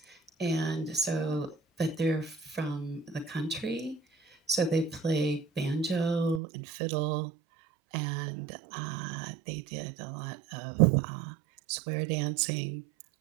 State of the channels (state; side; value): drops out; left; at 6.4 s